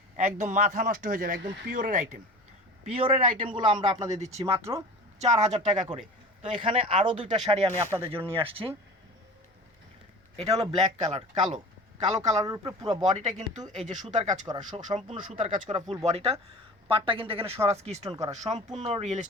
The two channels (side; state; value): both; normal; correlation 0.37